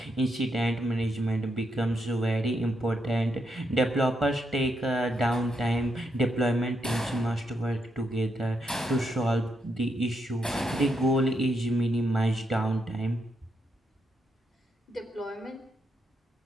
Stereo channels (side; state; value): both; normal; correlation 0.81